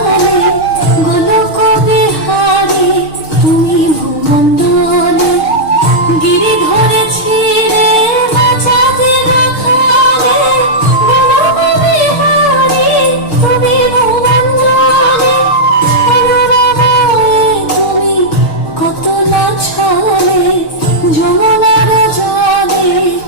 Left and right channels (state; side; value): late; right; 6.5 ms